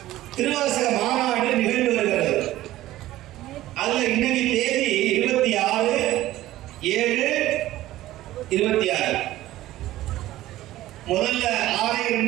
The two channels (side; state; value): left; quieter; 15.4 dB